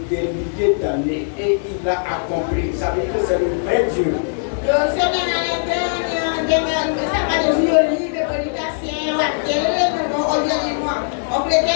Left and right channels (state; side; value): silent; right; digital silence